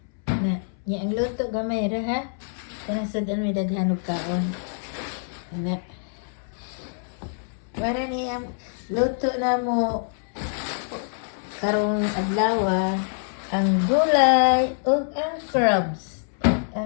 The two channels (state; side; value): silent; right; 62 dB below the other